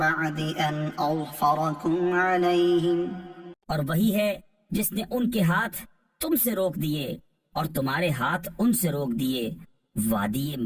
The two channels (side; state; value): both; identical; correlation 1.00